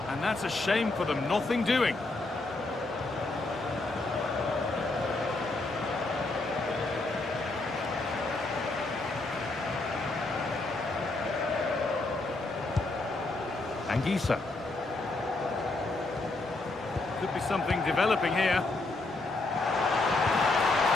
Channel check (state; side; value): quieter; right; 3.1 dB